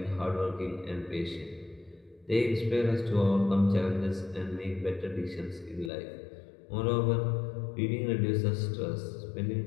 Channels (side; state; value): right; drops out; at 5.9 s